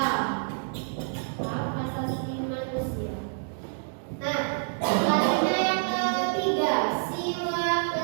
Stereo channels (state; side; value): silent; left; 60 dB below the other